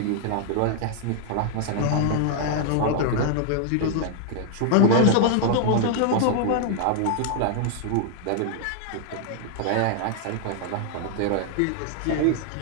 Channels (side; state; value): both; different; correlation 0.00